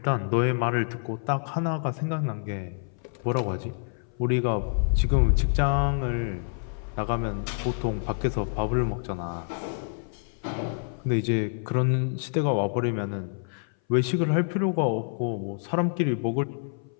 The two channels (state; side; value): silent; right; 58 dB below the other